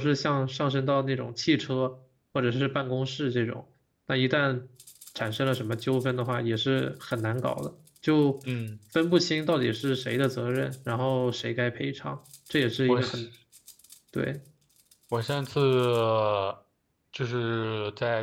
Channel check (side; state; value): both; identical; correlation 1.00